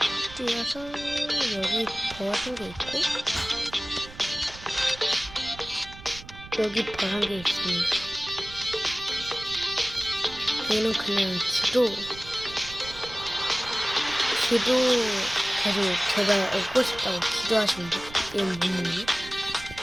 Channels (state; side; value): noise; right; rumble, 16 dB below the sound